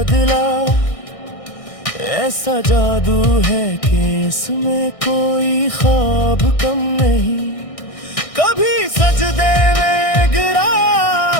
ऐसा जादू है कि इसमें कोई ख्वाब कम नहीं। कभी सजदे में गिरा,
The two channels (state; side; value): late; right; 1.6 ms